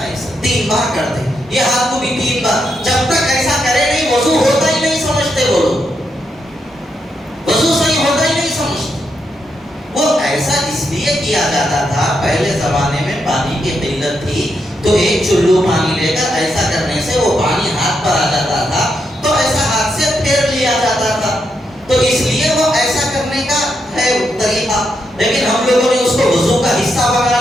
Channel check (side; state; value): both; normal; correlation 0.81